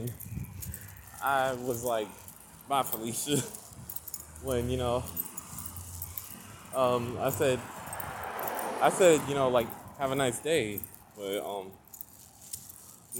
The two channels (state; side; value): identical; both; correlation 1.00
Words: I was like, "Bye, Felicia." When I said, like, have a nice day, but